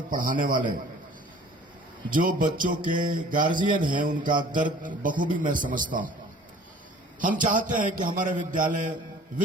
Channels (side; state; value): both; normal; correlation 0.49